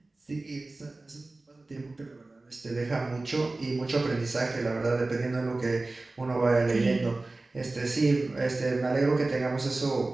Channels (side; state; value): left; quieter; 3.2 dB